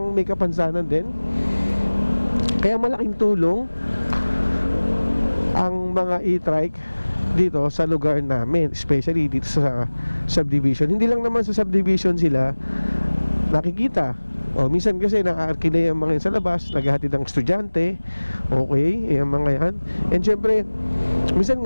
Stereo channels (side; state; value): both; inverted; correlation -1.00